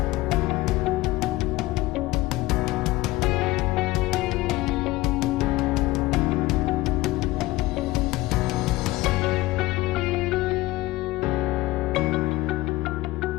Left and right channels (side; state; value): right; quieter; 18.7 dB